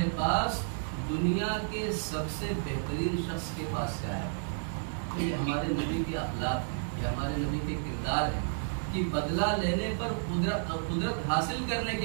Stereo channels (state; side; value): silent; left; digital silence